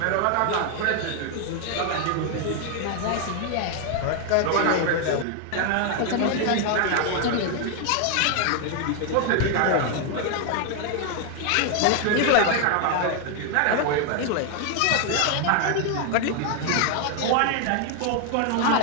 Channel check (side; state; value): both; different; correlation 0.00